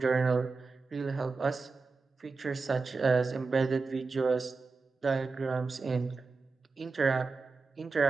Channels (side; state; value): left; quieter; 4.3 dB